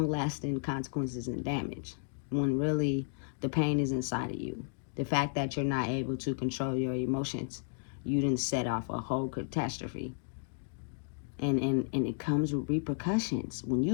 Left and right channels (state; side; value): silent; right; digital silence